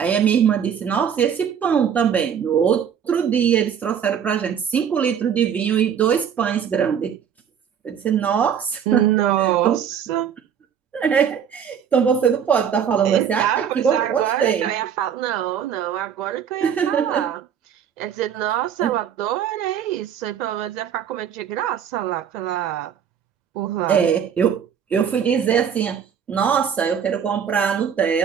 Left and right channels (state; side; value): quieter; left; 8.2 dB